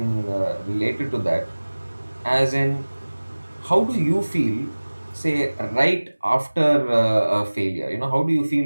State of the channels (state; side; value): inverted; both; correlation -1.00